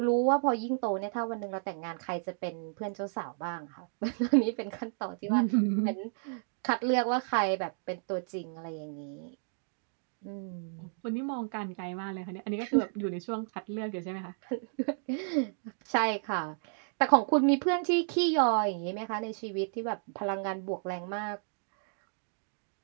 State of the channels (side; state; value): left; silent; digital silence